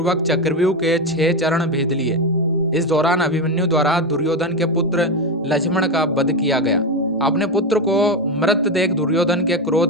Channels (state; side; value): normal; both; correlation 0.13